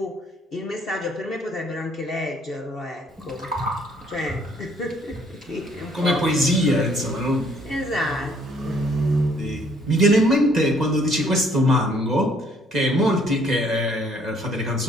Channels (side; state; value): both; normal; correlation 0.63